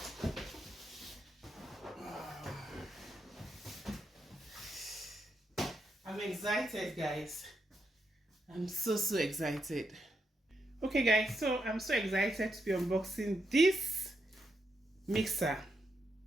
I'm excited, guys. I'm so excited. Okay, guys, so I'm so excited to be unboxing this mixer.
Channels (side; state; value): both; normal; correlation 0.82